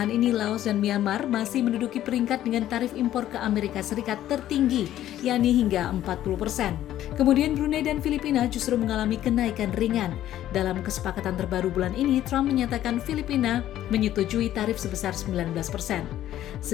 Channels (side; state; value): right; quieter; 12.6 dB